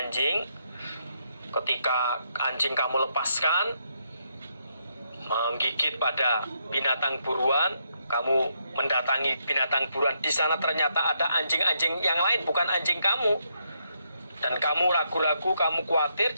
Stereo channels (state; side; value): inverted; both; correlation -0.77